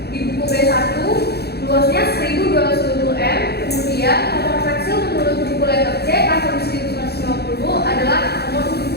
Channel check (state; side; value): late; right; 0.47 ms